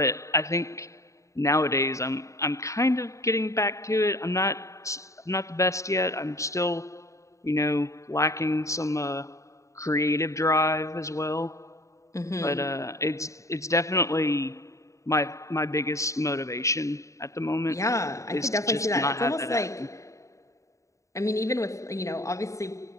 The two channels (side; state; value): right; late; 0.15 ms